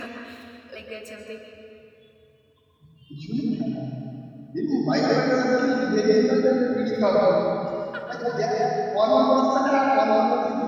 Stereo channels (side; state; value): both; identical; correlation 1.00